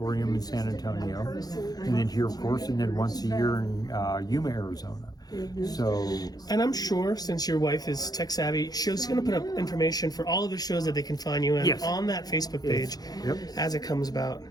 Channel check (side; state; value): right; late; 0.19 ms